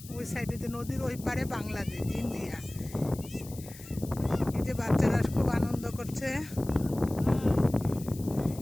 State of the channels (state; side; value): noise; left; hiss, 17 dB below the sound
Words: ওই সাইডে যে নদীর ওই পারে বাংলাদেশ ইন্ডিয়া। এই যে বাচ্চারা খুব আনন্দ করছে,